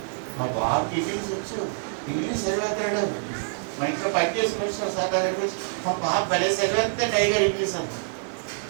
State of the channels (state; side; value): silent; left; digital silence